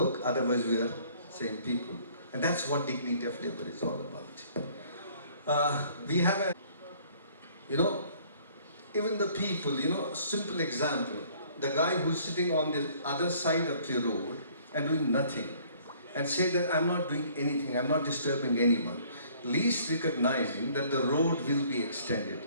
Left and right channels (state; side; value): inverted; both; correlation -0.58